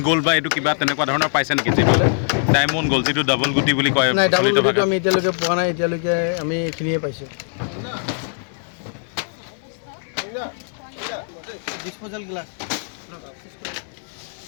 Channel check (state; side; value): silent; right; 64 dB below the other